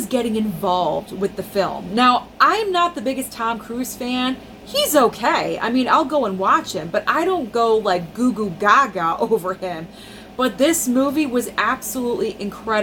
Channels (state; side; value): identical; both; correlation 1.00